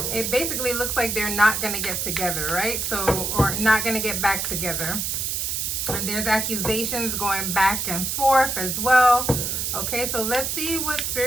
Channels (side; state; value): right; noise; hiss, 1 dB below the sound